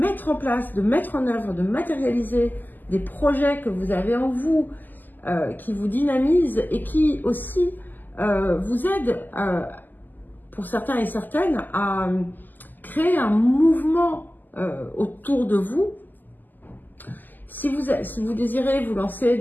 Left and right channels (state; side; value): late; right; 0.086 ms